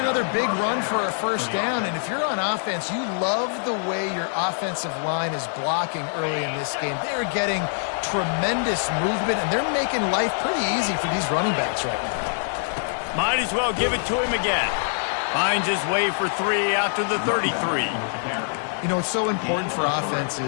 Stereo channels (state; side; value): silent; right; digital silence